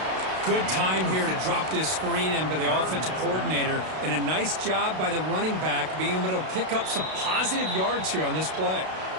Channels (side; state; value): left; late; 32 ms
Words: Good time here to drop this screen in by the offensive coordinator, and a nice job by the running back being able to pick up some positive yards here on this play.